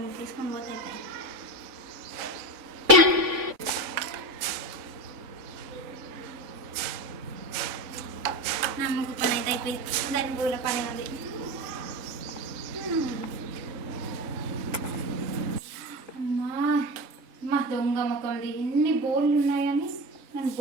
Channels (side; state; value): left; late; 3.5 ms